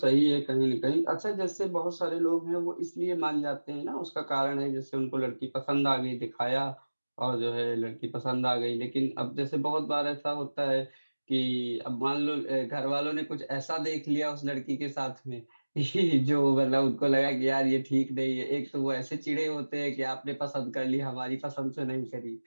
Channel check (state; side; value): inverted; both; correlation -1.00